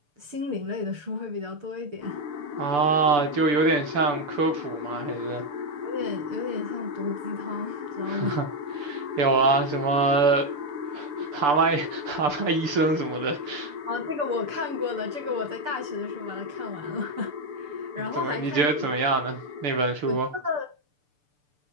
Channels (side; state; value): left; late; 6.8 ms